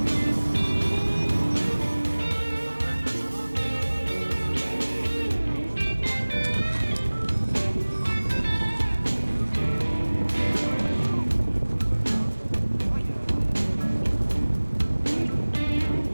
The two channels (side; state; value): both; inverted; correlation -1.00